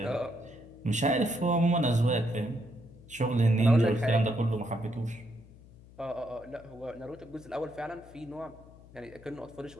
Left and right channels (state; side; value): noise; left; hum, 22 dB below the sound